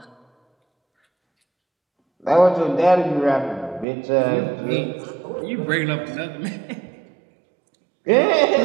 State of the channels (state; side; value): drops out; left; at 3.9 s